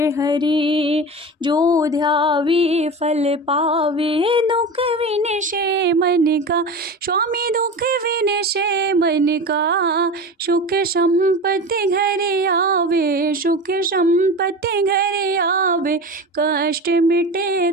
हरे जो ध्यावे फल पावे दुख विनशे मन का स्वामी दुख विनशे मन का सुख संपत्ति घर आवे सुख संपत्ति घर आवे कष्ट मिटे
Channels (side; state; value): both; normal; correlation 0.29